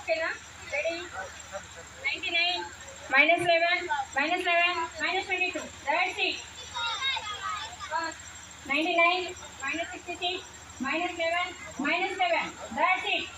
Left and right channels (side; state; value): both; identical; correlation 1.00